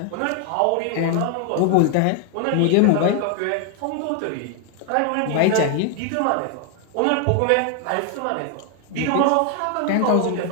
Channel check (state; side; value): different; both; correlation 0.00